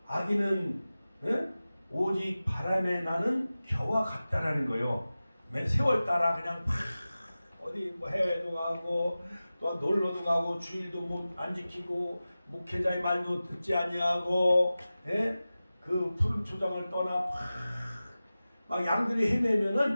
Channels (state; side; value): inverted; both; correlation -0.96